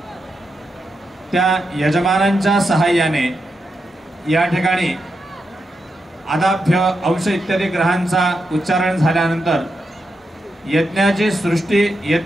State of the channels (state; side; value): normal; both; correlation 0.86